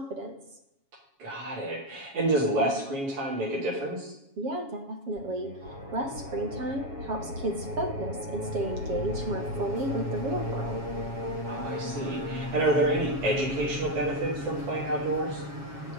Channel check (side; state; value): left; late; 7.3 ms